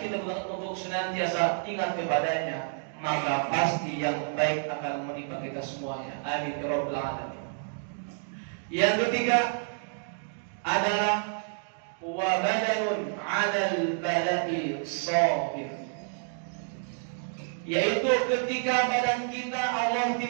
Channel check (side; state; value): left; silent; digital silence